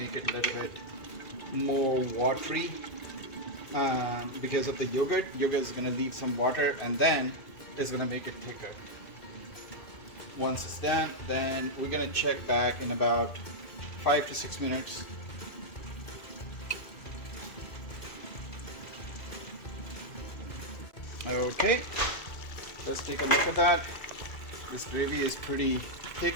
it a little bit more watery because of the yogurt. Yogurt is going to leave some water and then it's going to make it thicker. Once it's done, then we're going to check back in about 5 to 6 minutes. Okay, let's take a look at that. This gravy is pretty thick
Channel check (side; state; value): right; late; 2.2 ms